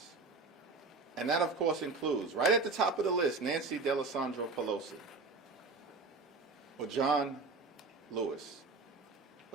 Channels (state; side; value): quieter; left; 3.9 dB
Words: And that, of course, includes, right at the top of the list, Nancy Pelosi, or John Lewis,